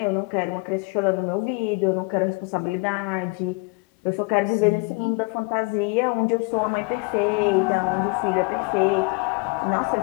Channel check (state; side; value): quieter; right; 28.4 dB